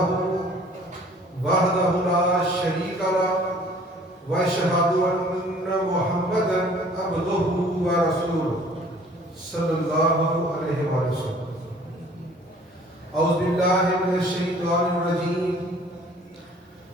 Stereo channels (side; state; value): both; normal; correlation 0.53